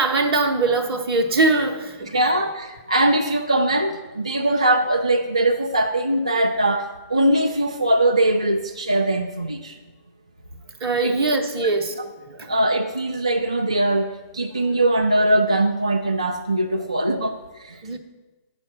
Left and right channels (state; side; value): inverted; both; correlation -0.64